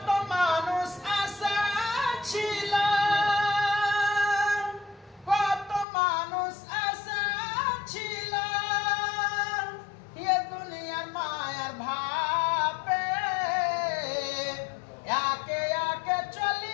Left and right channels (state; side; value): drops out; right; at 5.9 s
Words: মানুষ আশা ছিল, কত মানুষ আশা ছিল, এ দুনিয়ার মায়ার ভাবে একে একে